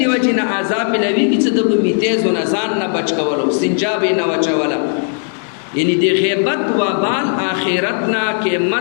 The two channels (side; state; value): right; silent; 57 dB below the other